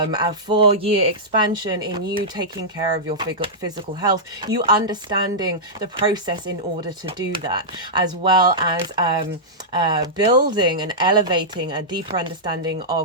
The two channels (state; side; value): normal; both; correlation -0.12